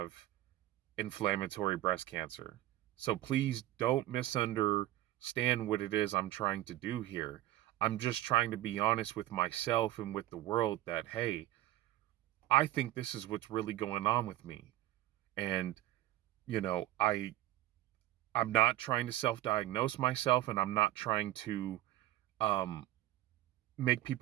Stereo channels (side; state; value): left; quieter; 15.3 dB